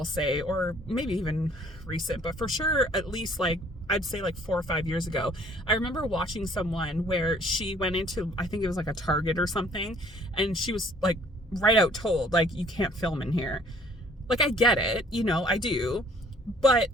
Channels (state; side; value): normal; both; correlation 0.58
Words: say, or maybe even recent, but for sure, at least like, I'd say like 4 or 5 years ago, I remember watching someone where she went into, I think it was like a Target or something, and she was like right out told, like, you can't film in here. Like, I get it, you know, I do, but